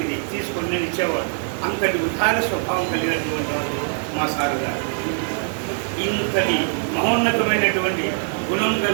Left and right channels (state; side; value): silent; left; 59 dB below the other